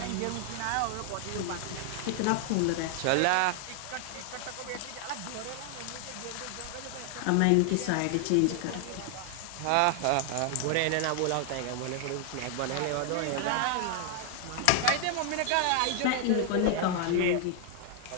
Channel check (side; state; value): both; different; correlation 0.00